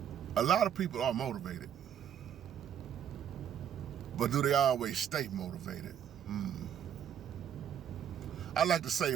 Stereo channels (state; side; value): quieter; left; 9.1 dB